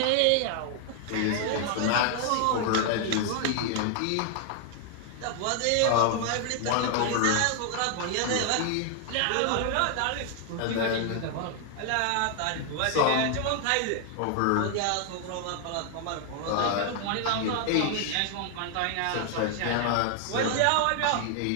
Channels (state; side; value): different; both; correlation 0.00